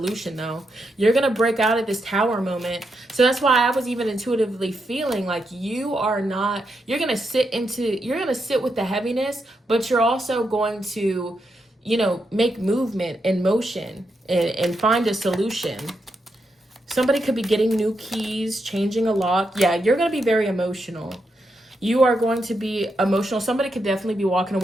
though. You're going to break out of this Tower moment. So that's why I was even intuitively feeling like you're going to sit with the heaviness, but you're also going to make movement and motion and find a solution. Somebody could be getting new keys, changing a lock. Yeah, you're going to be very emotional. You are going to be emotional. Somebody could definitely be walking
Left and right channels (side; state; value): both; normal; correlation 0.83